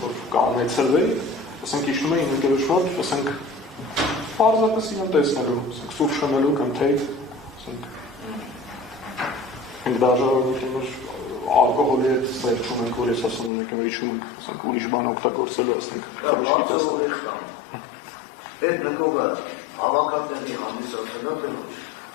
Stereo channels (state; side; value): drops out; right; at 13.5 s